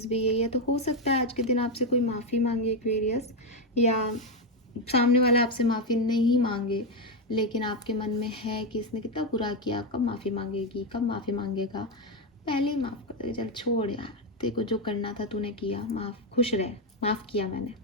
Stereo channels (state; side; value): normal; both; correlation 0.07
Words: भी यही है। तो हो सकता है आज के दिन आपसे कोई माफ़ी मांगे एक्वेरियस, या सामने वाला आपसे माफ़ी नहीं मांगे, लेकिन आपके मन में है कि इसने कितना बुरा किया, कब माफ़ी मांगेगी, कब माफ़ी मांगेगा, पहले ही माफ़ कर दे, चल छोड़ यार, तेरे को जो करना था तूने किया, खुश रह, माफ़ किया मैंने,